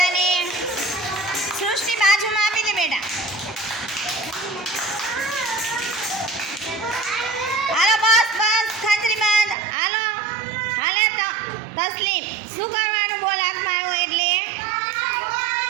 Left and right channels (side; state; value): left; drops out; at 9.6 s